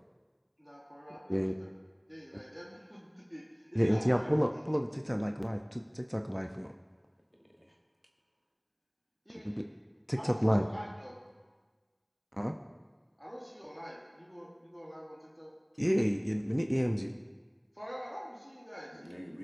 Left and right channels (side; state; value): both; identical; correlation 1.00